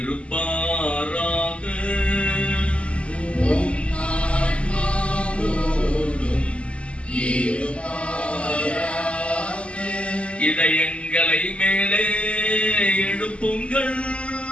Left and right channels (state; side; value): late; right; 0.057 ms